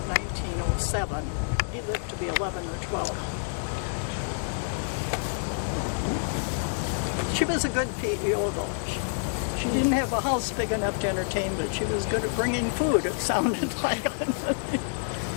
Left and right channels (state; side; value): silent; right; 59 dB below the other